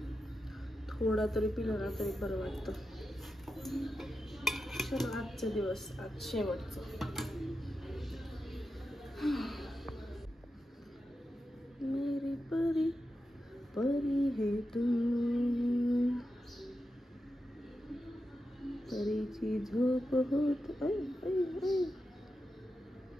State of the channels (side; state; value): both; normal; correlation 0.90